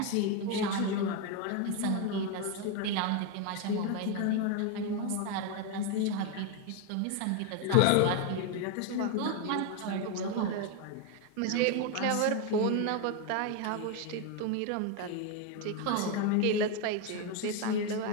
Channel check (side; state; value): both; different; correlation 0.01